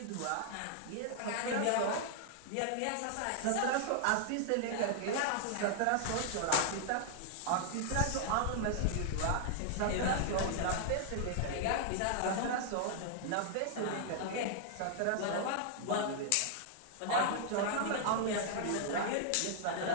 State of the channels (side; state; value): both; different; correlation -0.01